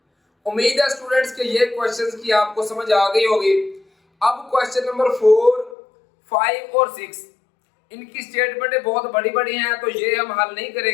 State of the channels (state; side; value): drops out; right; at 5.8 s